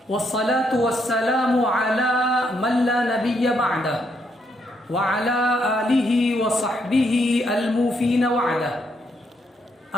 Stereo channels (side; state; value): both; normal; correlation 0.75